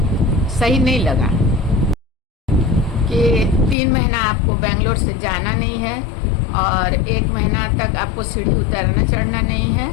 सही नहीं लगा, कि 3 महीना आपको बेंगलोर से जाना नहीं है, और 1 महीना तक आपको सीढ़ी उतरना चढ़ना नहीं है।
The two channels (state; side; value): drops out; right; at 3.8 s